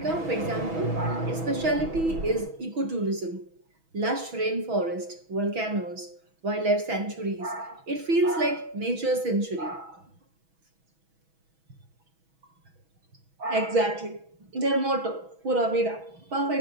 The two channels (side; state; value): left; late; 6.2 ms